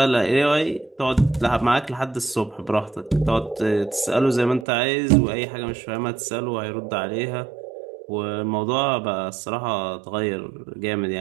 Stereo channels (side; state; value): left; drops out; at 4.7 s